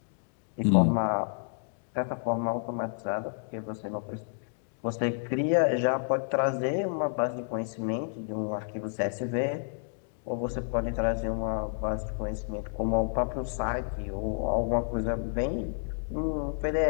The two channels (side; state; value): right; silent; digital silence